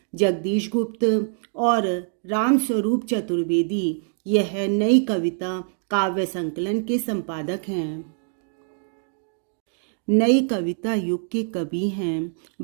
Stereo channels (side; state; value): left; silent; digital silence